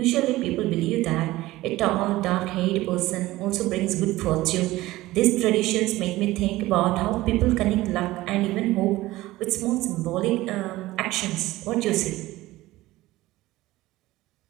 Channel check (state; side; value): quieter; left; 17.7 dB